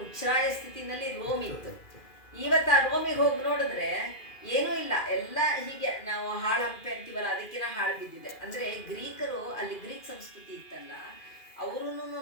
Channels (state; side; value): late; right; 2.4 ms